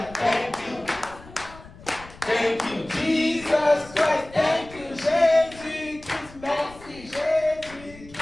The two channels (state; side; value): noise; left; rumble, 20 dB below the sound